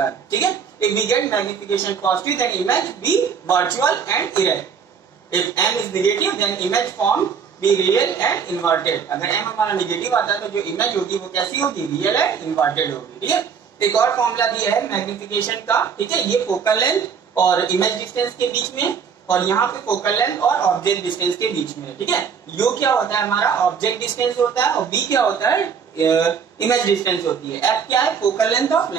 है, ठीक है, if we get magnification positive then image be virtual and erect. If m is negative then image form be real and inverted. अगर m हमारा नेगेटिव आता है तो जो इमेज होगी वो कैसी होगी? रियल एंड इन्वर्टेड होगी। ठीक है, एक और फॉर्मूला दिया है मैग्निफिकेशन का। ठीक है, ये फोकल लेंथ और इमेज डिस्टेंस के बीच में, और यहाँ पे फोकल लेंथ और ऑब्जेक्ट डिस्टेंस के बीच में। ठीक है, u क्या होता है? हमारा ऑब्जेक्ट डिस्टेंस होता है, और v क्या होता है? इमेज डिस्टेंस होती है। f क्या है? फोकल लेंथ ऑफ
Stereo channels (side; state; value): left; quieter; 6.6 dB